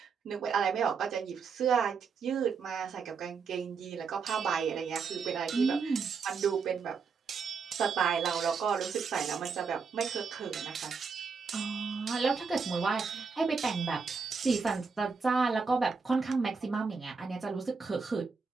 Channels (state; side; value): quieter; left; 5.3 dB